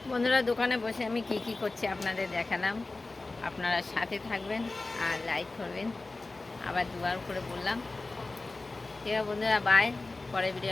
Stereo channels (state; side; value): quieter; right; 3.3 dB